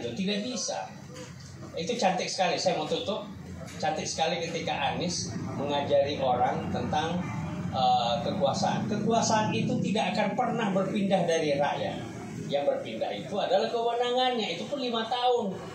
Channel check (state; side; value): identical; both; correlation 1.00